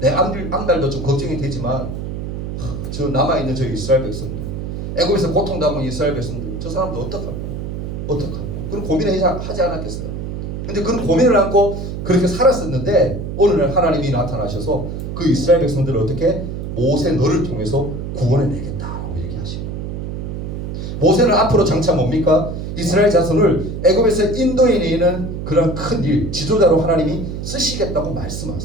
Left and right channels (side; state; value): right; noise; hum, 6 dB below the sound